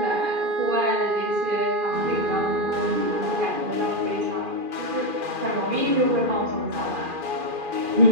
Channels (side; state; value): left; late; 2.4 ms